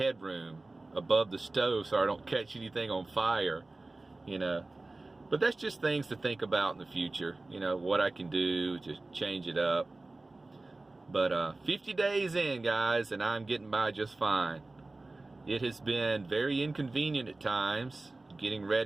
above the stove so I don't catch anything on fire, you know. But that's just things to think about in the future, you know, what I can do to change it up. But 50 days in, guys, and I'm getting by just fine. It has been very inconvenient at times, getting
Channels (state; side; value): quieter; left; 3.1 dB